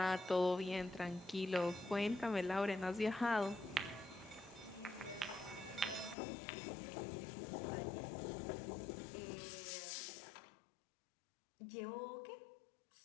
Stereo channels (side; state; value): right; drops out; at 6.2 s